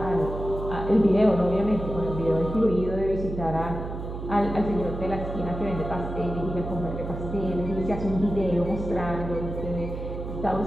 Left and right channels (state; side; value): noise; right; hum, 7 dB below the sound